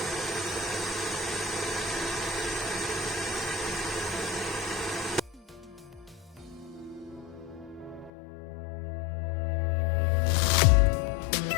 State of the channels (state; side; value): drops out; right; at 8.1 s